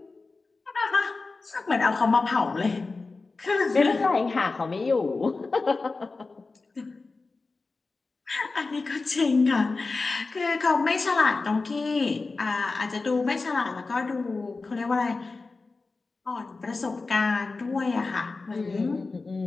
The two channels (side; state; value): right; quieter; 3.8 dB